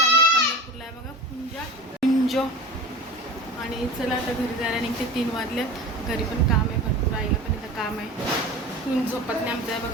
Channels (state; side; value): normal; both; correlation 0.34